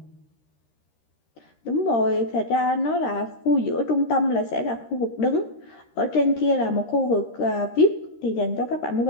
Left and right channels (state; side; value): late; right; 13 ms